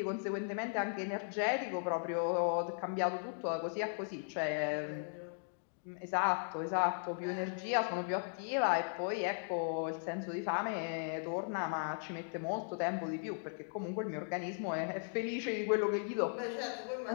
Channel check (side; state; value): right; silent; digital silence